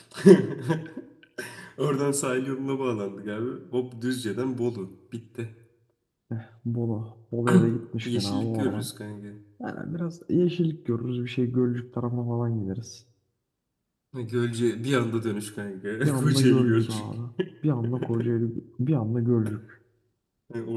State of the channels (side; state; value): both; identical; correlation 1.00